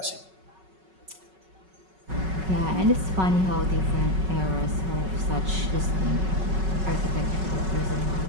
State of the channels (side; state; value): left; late; 5.3 ms